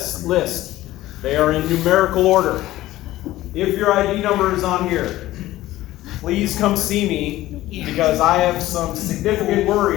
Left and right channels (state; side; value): quieter; right; 15.8 dB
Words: list, they are in numerical order. If your ID number is on here, please come see me because I have some significant